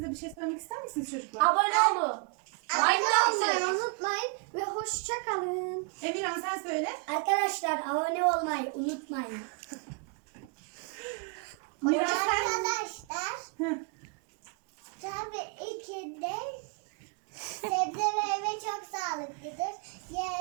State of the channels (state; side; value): quieter; left; 34.2 dB